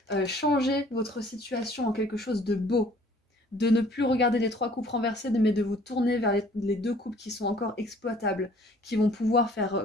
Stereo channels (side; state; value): both; normal; correlation 0.56